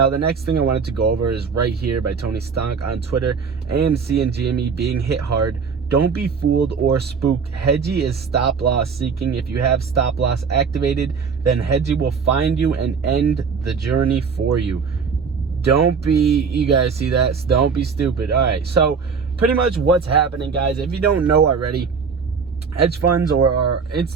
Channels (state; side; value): quieter; left; 5.7 dB